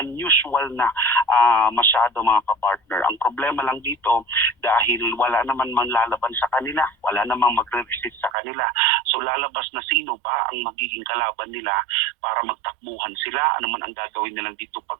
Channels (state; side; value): drops out; left; at 8.3 s